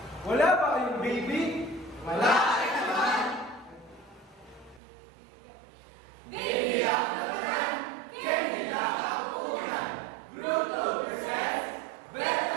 Wala ba kayong baby? Wala ka naman. Baby ako naman. Candy na kapunan. Bruto presents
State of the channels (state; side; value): drops out; left; at 4.8 s